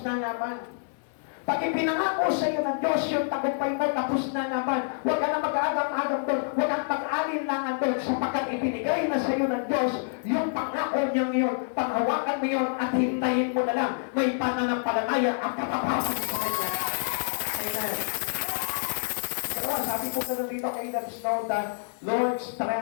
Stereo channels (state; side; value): silent; right; 58 dB below the other